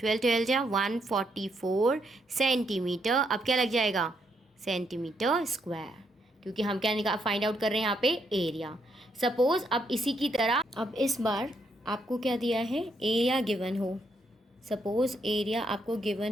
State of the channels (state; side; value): normal; both; correlation 0.76